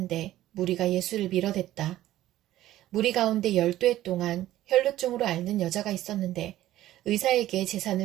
무리가 예수를 밀어댔다. 무리 가운데 12해 동안 혈루증으로 앓는 여자가 있었는데 의사에게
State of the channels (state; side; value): quieter; left; 14.2 dB